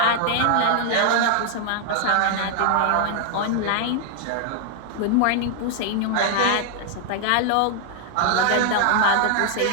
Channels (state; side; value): different; both; correlation 0.00